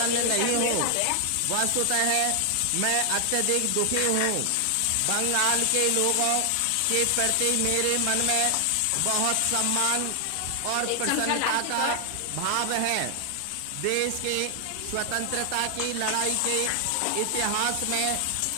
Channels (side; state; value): both; different; correlation 0.00